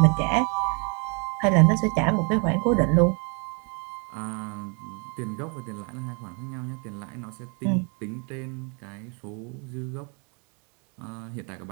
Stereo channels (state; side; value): quieter; left; 35.9 dB